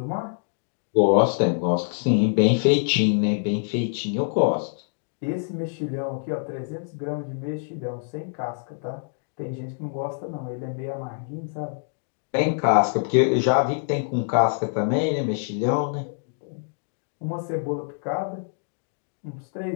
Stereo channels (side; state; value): right; silent; digital silence